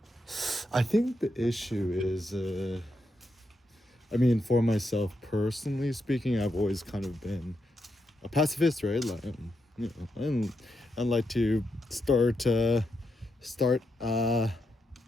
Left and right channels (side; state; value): both; normal; correlation 0.84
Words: think the issue is, for myself personally speaking, I've always kind of been a pacifist, right? Like, I like to start